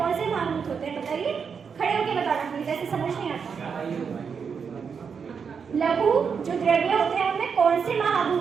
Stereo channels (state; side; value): quieter; left; 6.3 dB